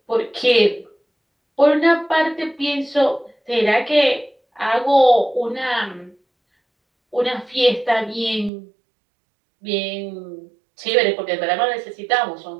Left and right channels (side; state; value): left; drops out; at 8.5 s